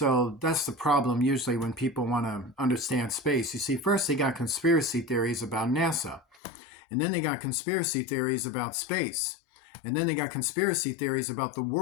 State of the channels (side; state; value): right; drops out; at 6.4 s